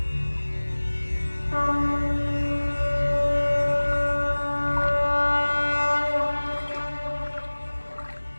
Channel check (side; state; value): both; inverted; correlation -1.00